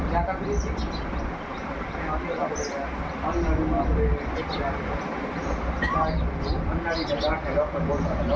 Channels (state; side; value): identical; both; correlation 1.00